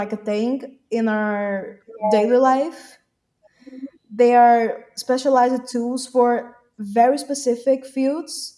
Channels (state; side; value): identical; both; correlation 1.00